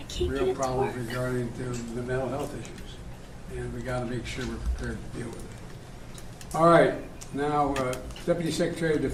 real problems regarding to the mental health issues. And we got to make sure we're prepared to deal with it. All right. Now, Deputy Secretary of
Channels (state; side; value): identical; both; correlation 1.00